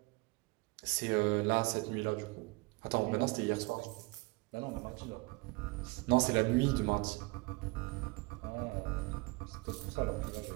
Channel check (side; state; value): left; quieter; 25.6 dB